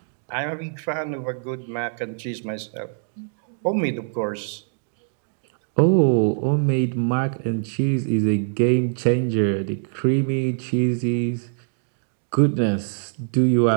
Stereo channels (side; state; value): left; silent; digital silence